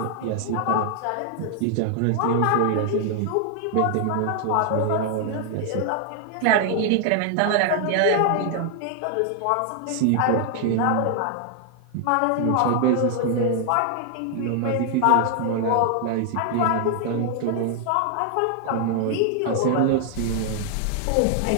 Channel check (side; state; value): both; different; correlation 0.00